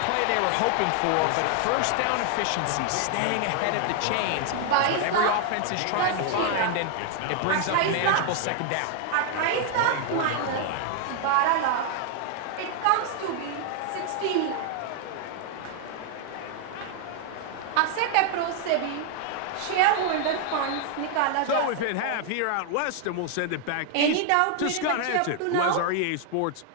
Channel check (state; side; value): different; both; correlation 0.00